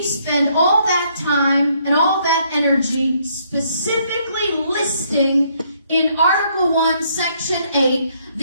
spend all that time and all that energy specifically listing in Article 1, Section 8,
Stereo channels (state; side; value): inverted; both; correlation -0.69